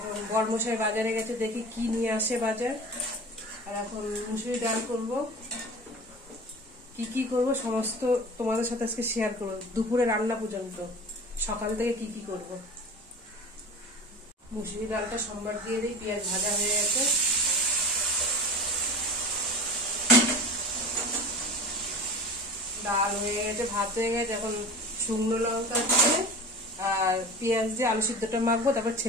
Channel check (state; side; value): normal; both; correlation 0.35